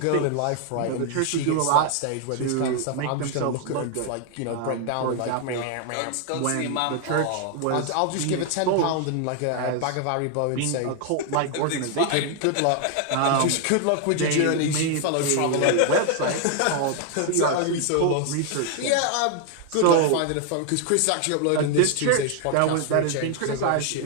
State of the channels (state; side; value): different; both; correlation 0.00